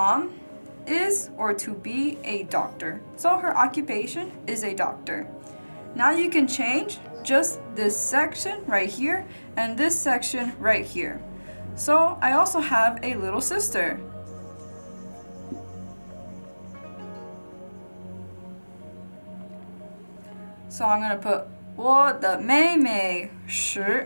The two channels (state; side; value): inverted; both; correlation -1.00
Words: is or to be a doctor. So her occupation is a doctor. Now you can change just this section right here and this section right here. So I also have a little sister. So I'm going to put 我的妹妹